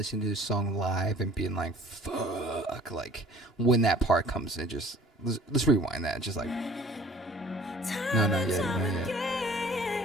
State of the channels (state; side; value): normal; both; correlation 0.49